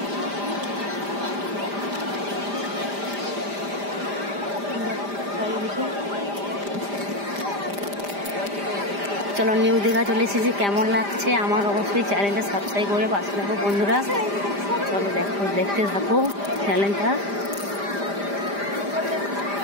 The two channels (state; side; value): late; left; 5.0 ms